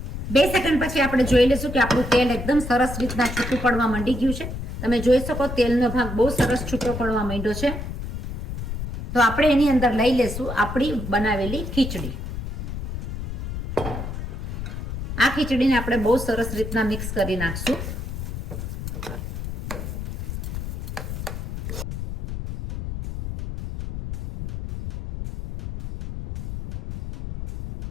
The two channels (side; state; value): left; noise; rumble, 6 dB below the sound